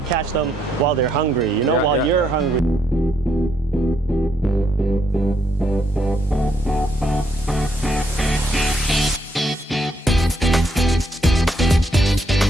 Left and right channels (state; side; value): normal; both; correlation 0.74